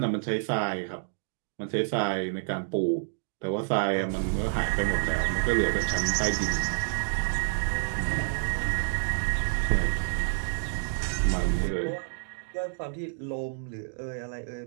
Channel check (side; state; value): left; silent; digital silence